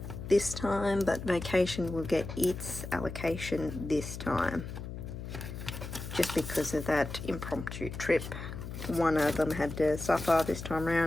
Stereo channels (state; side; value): noise; left; hum, 8 dB below the sound